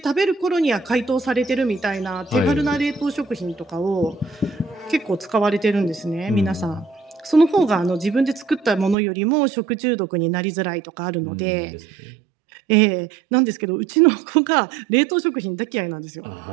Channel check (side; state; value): left; drops out; at 9.0 s